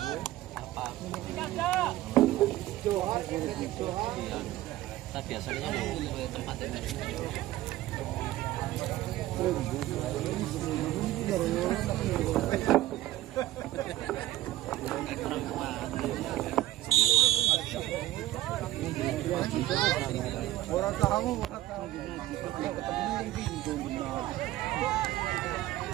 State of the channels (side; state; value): left; quieter; 15.6 dB